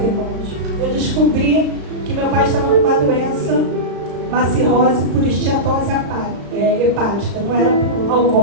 irmãos, eu descobri que meu pai estava com uma doença, uma cirrose por esteatose hepática, não era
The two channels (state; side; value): late; left; 35 ms